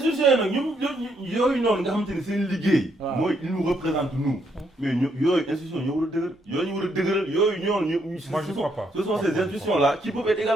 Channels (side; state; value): both; normal; correlation 0.74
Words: yi nag ñoom yooyu noonu nga xamante ni seen liggéey. mooy ils nous représentent nous. mais yooyu institution ñoo war a dëgër yooyu ñu war a dëgëral yooyu ñoonu moi je crois pas. ce sont ces institutions là qui peuvent être